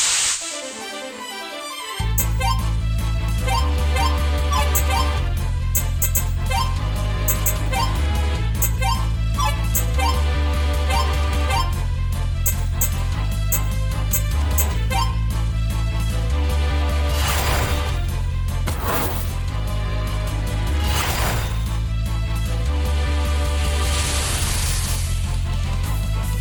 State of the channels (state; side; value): identical; both; correlation 1.00